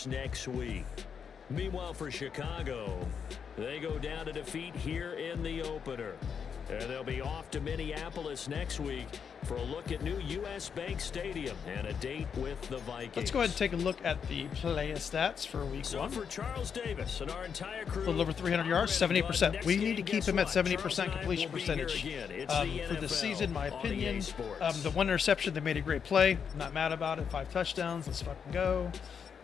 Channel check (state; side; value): quieter; right; 6.9 dB